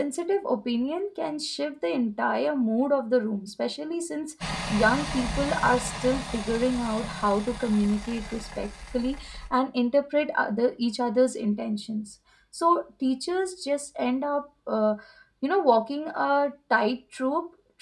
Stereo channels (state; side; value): identical; both; correlation 1.00